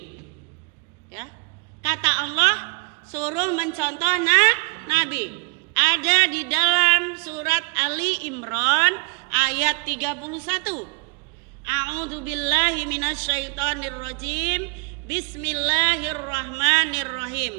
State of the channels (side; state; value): left; quieter; 35.9 dB